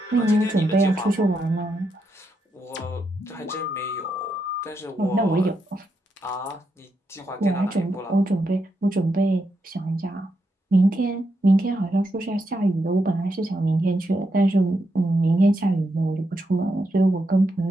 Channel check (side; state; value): both; normal; correlation 0.83